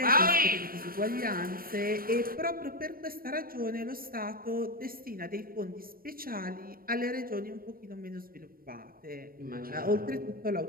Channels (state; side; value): late; left; 0.42 ms